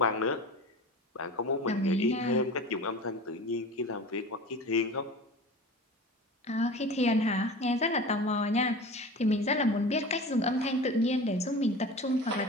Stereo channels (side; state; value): both; normal; correlation 0.35